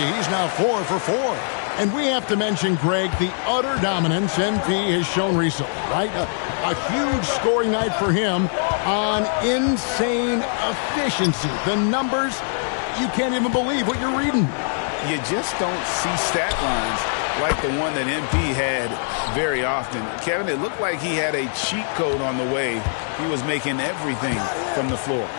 He's now 4 for 4. And we have to mention, Greg, the utter dominance MP has shown recently, right? A huge scoring night for him on insane efficiency. The numbers, you can't even believe what you're reading. You just don't see stat lines like the one that MP had very often. Kevin, it looked like he had a cheat code on the way. He was making everything from the floor.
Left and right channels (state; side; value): silent; right; 64 dB below the other